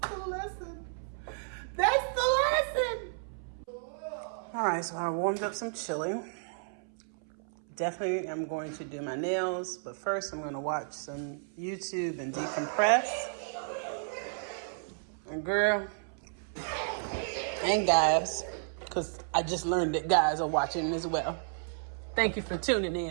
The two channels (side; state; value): left; silent; 56 dB below the other